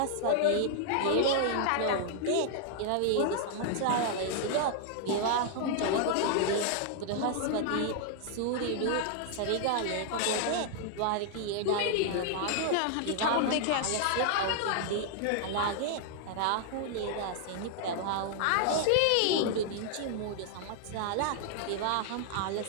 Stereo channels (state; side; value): different; both; correlation -0.01